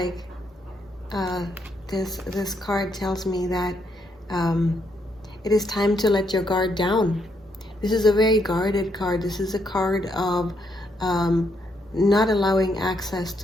this card tells me that it is time to let your guard down. This is a very guarded card. This is a card of not allowing access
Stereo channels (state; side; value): normal; both; correlation 0.75